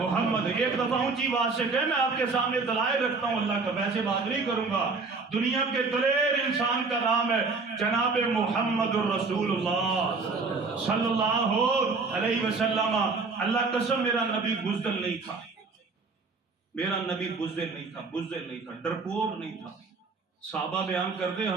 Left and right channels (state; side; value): quieter; left; 4.2 dB